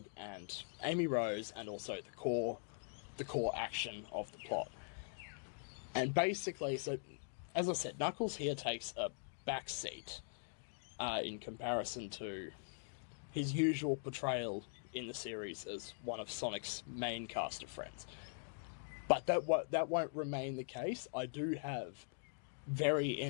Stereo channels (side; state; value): right; silent; digital silence